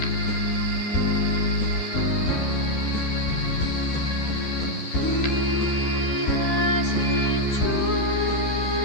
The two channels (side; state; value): right; late; 13 ms